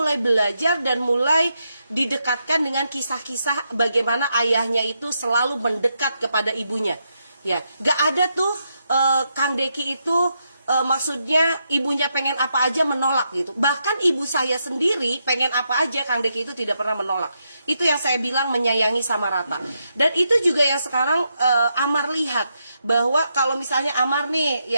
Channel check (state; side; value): inverted; both; correlation -0.82